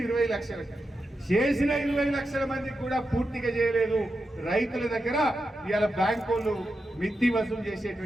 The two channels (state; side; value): normal; both; correlation 0.88